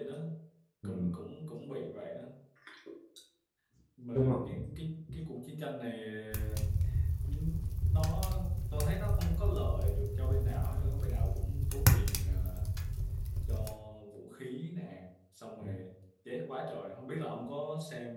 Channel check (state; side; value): identical; both; correlation 1.00